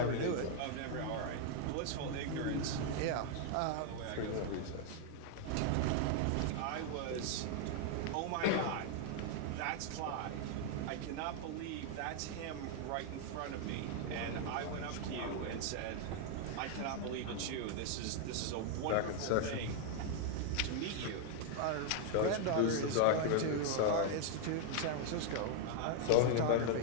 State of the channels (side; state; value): both; different; correlation 0.00